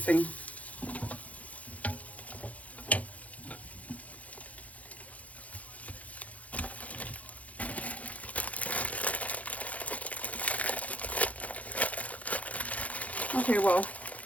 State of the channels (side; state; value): right; late; 0.069 ms